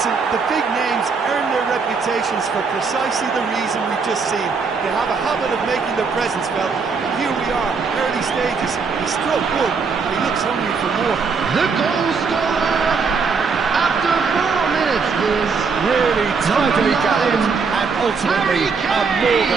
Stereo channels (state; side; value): quieter; left; 5.1 dB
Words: the big names earn their reputations for precisely the reason we've just seen. They have a habit of making their presence felt. Here we are, early stages. He struck one, and he looks hungry for more. The goal scorer after 4 minutes is Really tidily gathered, and ultimately a more